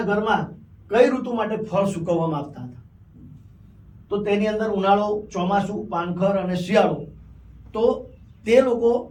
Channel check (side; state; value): both; identical; correlation 1.00